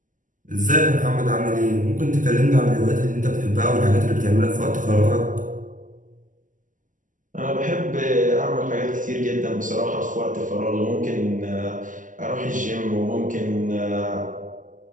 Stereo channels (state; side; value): late; left; 0.38 ms